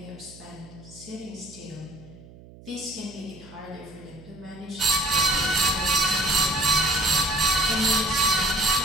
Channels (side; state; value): right; noise; hum, 20 dB below the sound